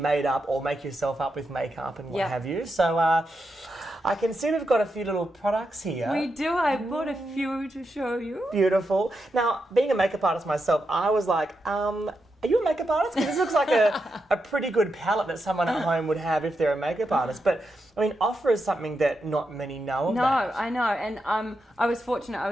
up or make yourself up with makeup and what have you. So I can see we've got a few little products here. We do. I bought a few to show you. Beautiful. Now, being a makeup artist myself, I was like, are you a makeup artist? Because this looks like a pretty good palette that someone at home would have if they're a makeup artist. But, I mean, offer is something that not many know about. No, I know. And I was fortunate.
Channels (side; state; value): both; normal; correlation 0.86